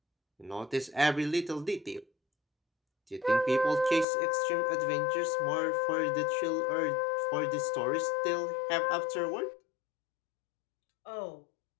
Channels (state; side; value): drops out; right; at 4.0 s